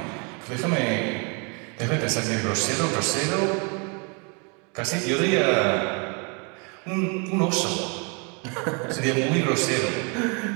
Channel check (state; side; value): quieter; left; 34.3 dB